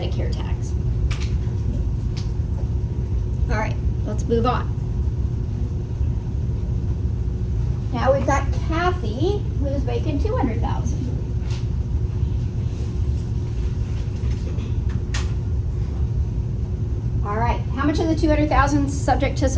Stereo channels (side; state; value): both; identical; correlation 1.00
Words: tax. All right, let's move on. Now we've got Kathy, who's making $200,000. All right, how much of the $200,000 is subject to